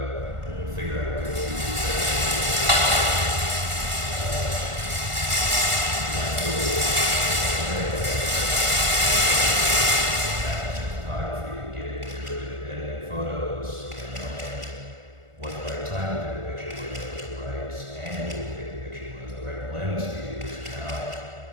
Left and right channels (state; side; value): late; left; 1.4 ms